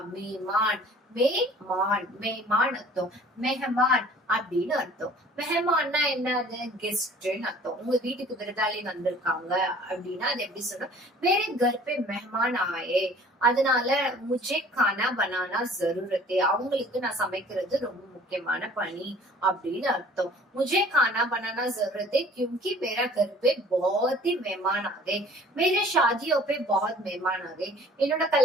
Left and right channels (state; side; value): normal; both; correlation 0.50